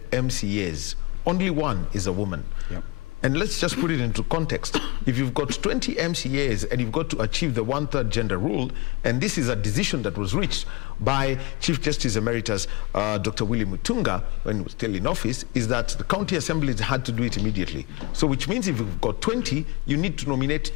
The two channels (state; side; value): quieter; right; 24.9 dB